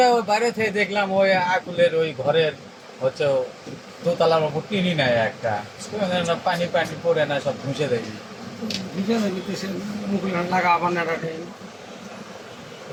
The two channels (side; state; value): both; identical; correlation 1.00